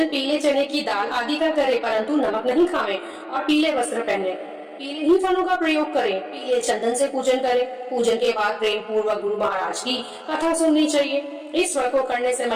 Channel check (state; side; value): identical; both; correlation 1.00